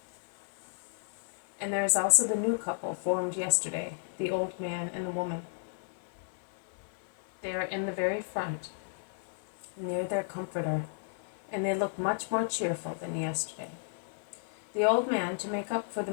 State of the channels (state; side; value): silent; right; digital silence